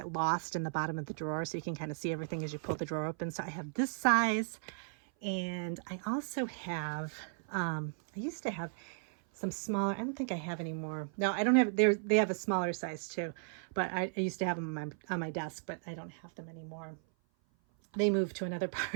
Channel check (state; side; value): silent; left; 54 dB below the other